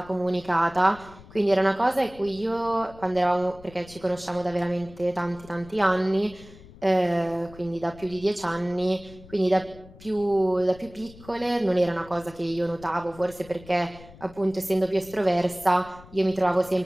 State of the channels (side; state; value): left; noise; rumble, 20 dB below the sound